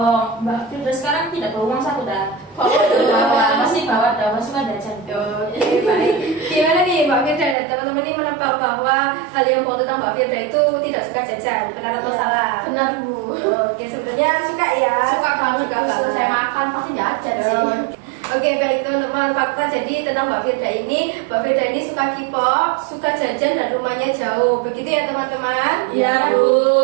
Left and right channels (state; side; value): drops out; left; at 7.6 s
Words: Mbak Firda sekarang tidak bawa uang saku dah. Masih bawa dah, masih suka jajan. Oke, baik. Gimana nih Mbak Firda dan teman-teman ini menebak bahwa hal yang bohong tentang Mbak Firda itu tidak suka jajan, benar atau salah? Benar Bu. Oke, sebenarnya suka ya. Suka banget. Suka banget. Saya makan pasti jajan sih. Oke, baik teman-teman, fakta jadi tentang Mbak Firda ini suka K-pop, suka jajan dan rumahnya jauh. Begitu ya teman-teman? Iya Bu.